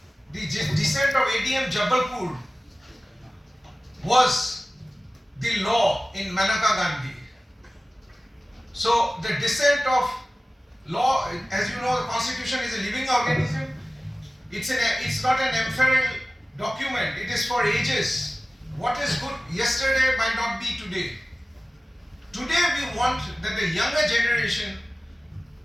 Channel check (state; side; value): normal; both; correlation 0.97